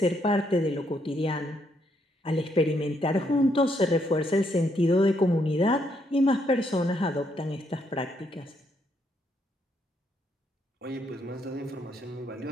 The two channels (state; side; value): normal; both; correlation 0.75